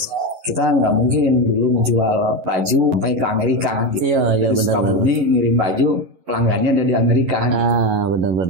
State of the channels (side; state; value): left; late; 11 ms